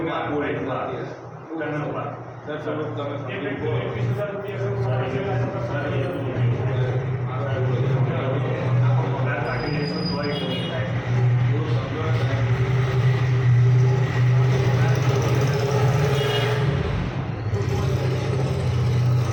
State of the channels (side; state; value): both; identical; correlation 1.00